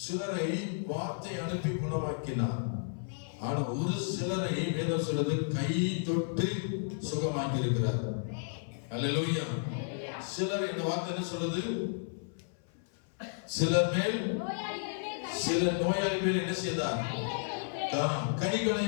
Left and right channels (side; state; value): right; silent; 56 dB below the other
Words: சிலரை வார்த்தை அனுப்பி குணமாக்கினார். ஆனா ஒரு சிலரை வேதம் சொல்றது கை தொட்டு சுகமாக்கி இருக்கிறார். அல்லேலூயா. சிலர் இந்த வார்த்தை என்ன சொல்றது? சிலர் மேல், சில நோயாளி மேல் என்ன செய்தார்? கைகளை